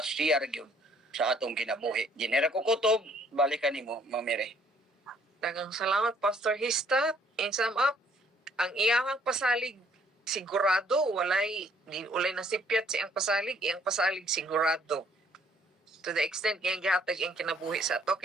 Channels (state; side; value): normal; both; correlation 0.63